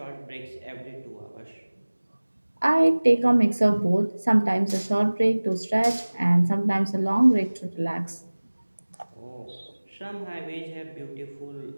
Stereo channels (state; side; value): inverted; both; correlation -1.00